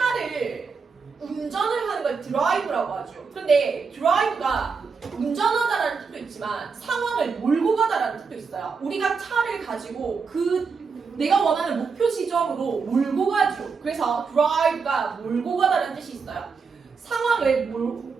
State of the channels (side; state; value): left; quieter; 5.2 dB